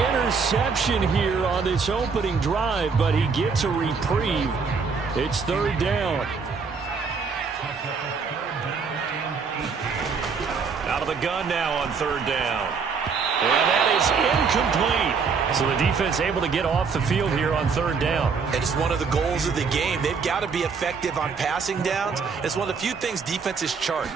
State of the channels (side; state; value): left; quieter; 5.4 dB